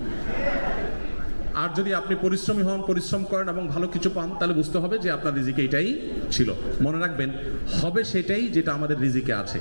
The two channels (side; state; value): both; inverted; correlation -1.00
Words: আর যদি আপনি পরিশ্রমী হন, পরিশ্রম করেন এবং ভালো কিছু পান, তাহলে বুঝতে হবে যে আপনার রিজিকে এটাই ছিল। মনে রাখবেন, হবে সেটাই যেটা আমাদের রিজিকে আছে।